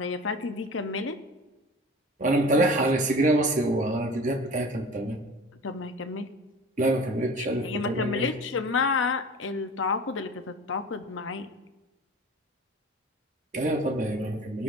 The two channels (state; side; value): normal; both; correlation 0.39